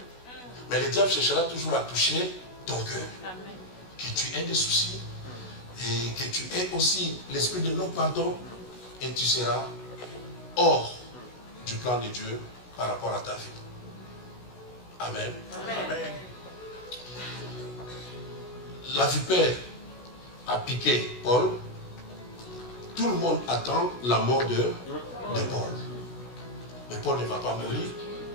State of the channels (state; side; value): late; right; 16 ms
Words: Mais le diable cherchera toujours à toucher ton cœur. Que tu aies des soucis et que tu aies aussi l'esprit de non-pardon et tu seras hors du plan de Dieu par rapport à ta vie. Amen. Amen. La vipère a piqué Paul. Tout le monde attend la mort de Paul. Mais Paul ne va pas mourir.